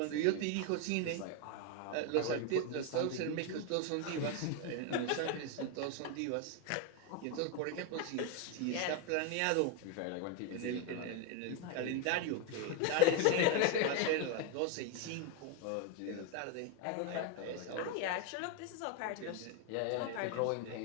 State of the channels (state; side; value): different; both; correlation 0.02